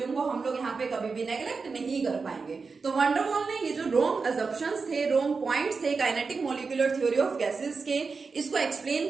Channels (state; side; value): quieter; left; 4.7 dB